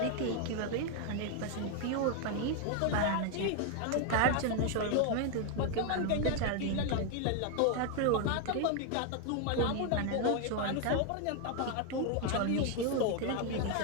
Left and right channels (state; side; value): different; both; correlation 0.01